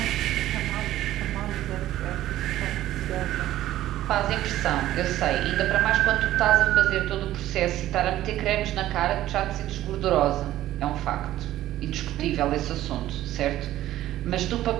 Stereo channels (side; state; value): left; quieter; 14.2 dB